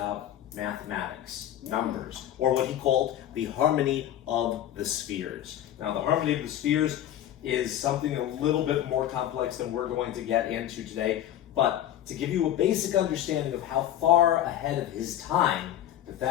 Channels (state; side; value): quieter; right; 11.6 dB